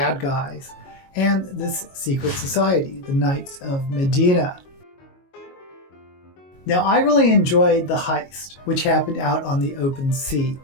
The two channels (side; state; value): right; late; 22 ms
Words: guys, and this secret society, the Knights of Medina. Now, I really enjoyed the heist, which happened out on the open sea,